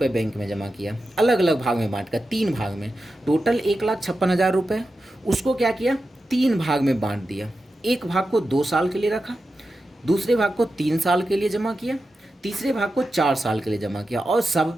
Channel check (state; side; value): normal; both; correlation 0.91